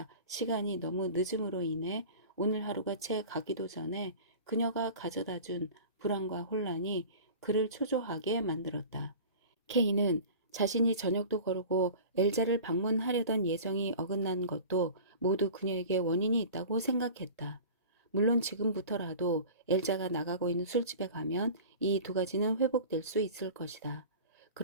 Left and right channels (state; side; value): inverted; both; correlation -0.39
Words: 시간이 너무 늦음으로 인해 오늘 하루가 채 가기도 전에 그녀가 가져다 준 불안과 혼란이 그를 초조하게 만들었다. K는 자신이 저녁도 거르고 엘자를 방문하려던 예정이 어긋난 것도 모두 그녀에게 원인이 있다고 생각했다. 물론 지금부터라도 엘자가 나가고 있는 술집에 가면 이 두 가지는 회복될 수 있을 것이다.